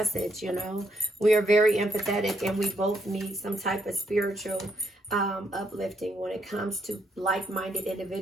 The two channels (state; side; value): normal; both; correlation 0.75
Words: We are very empathetic and we both need some type of spiritual uplifting when it comes to like-minded